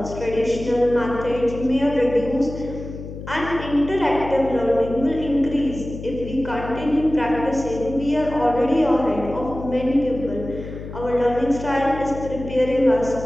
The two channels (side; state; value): left; noise; hum, 11 dB below the sound